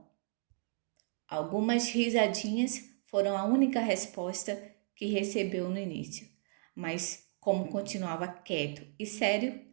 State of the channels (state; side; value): silent; left; 55 dB below the other